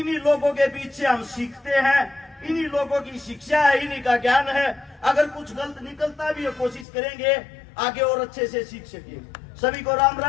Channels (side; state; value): right; drops out; at 6.9 s